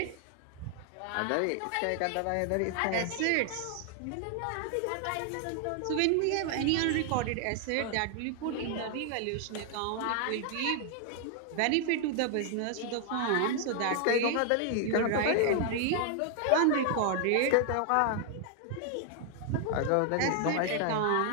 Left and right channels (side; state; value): both; different; correlation 0.00